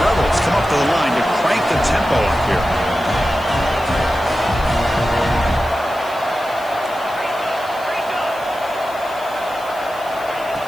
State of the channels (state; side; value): noise; left; hiss, 21 dB below the sound